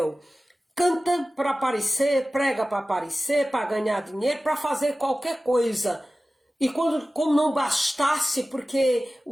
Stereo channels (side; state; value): both; normal; correlation 0.96